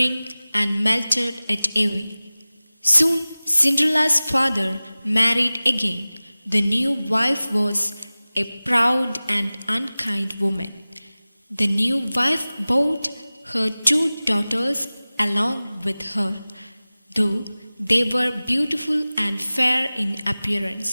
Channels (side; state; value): both; inverted; correlation -0.98